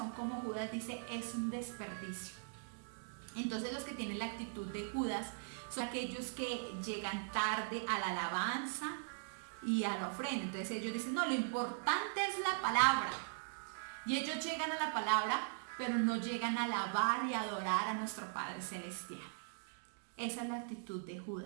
como Judas dice es un desperdicio. Entonces los que tienen la actitud de Judas son aquellos que llegan tarde a la alabanza y a la ofrenda. Entonces ellos dicen, no, lo importante es la palabra. Y ellos llegan a la palabra, pero no llegan a alabar y adorar a nuestro Padre Celestial. Esa es la actitud de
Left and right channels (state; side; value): silent; left; digital silence